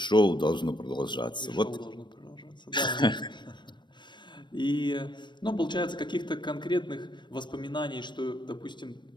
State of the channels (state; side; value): late; right; 0.22 ms